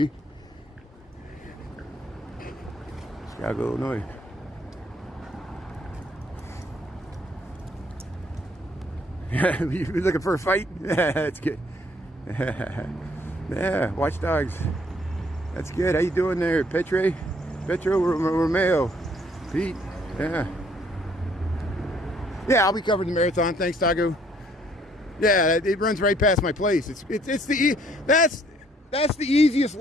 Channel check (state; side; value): normal; both; correlation 0.64